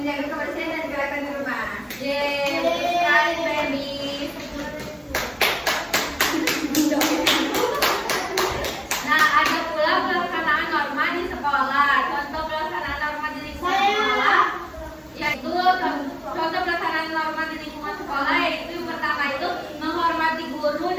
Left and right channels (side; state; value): both; identical; correlation 1.00